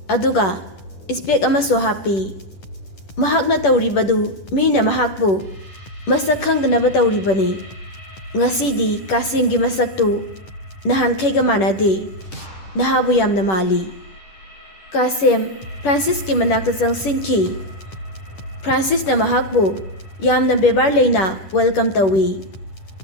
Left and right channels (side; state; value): right; late; 10 ms